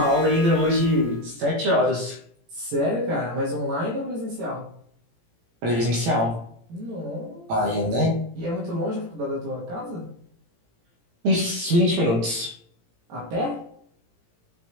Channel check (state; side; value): late; left; 18 ms